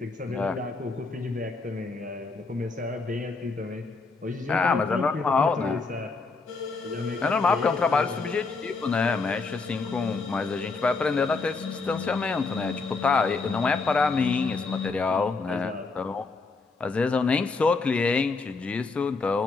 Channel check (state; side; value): quieter; right; 4.1 dB